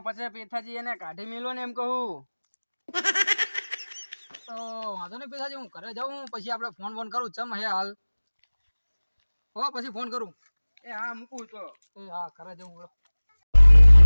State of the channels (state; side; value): inverted; both; correlation -1.00